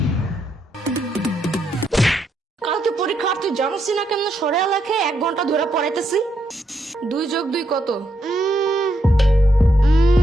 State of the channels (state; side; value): normal; both; correlation 0.78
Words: কালকে পরীক্ষা, তুই জানিস না কেমন সরে লেখে 1 ঘন্টা ধরে পড়াইতেছি। 2 + 2 কত?